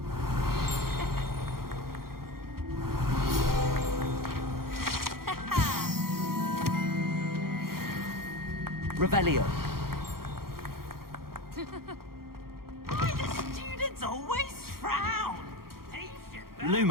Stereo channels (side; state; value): left; late; 0.93 ms